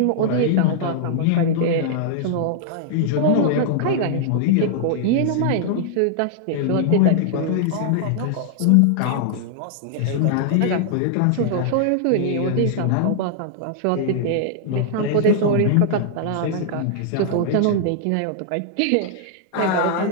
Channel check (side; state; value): both; different; correlation -0.01